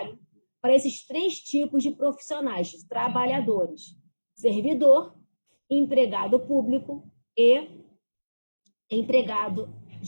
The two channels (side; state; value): both; inverted; correlation -1.00